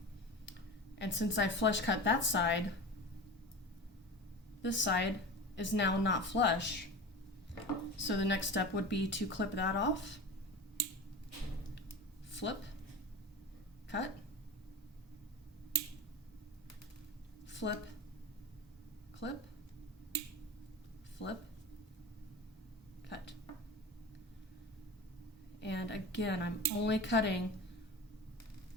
And since I flush cut that side, this side is now not flush. So the next step would be to clip that off, flip, cut, flip, clip, flip, cut. And again, I'm only cutting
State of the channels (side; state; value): both; normal; correlation 0.31